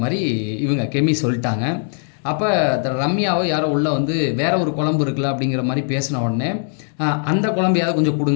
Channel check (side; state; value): right; silent; digital silence